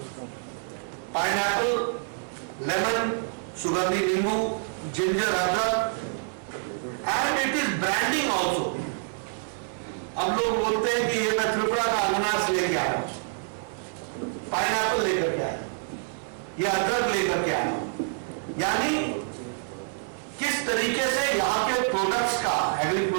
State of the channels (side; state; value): left; silent; 60 dB below the other